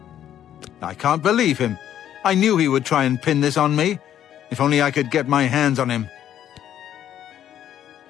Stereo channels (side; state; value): right; quieter; 10.7 dB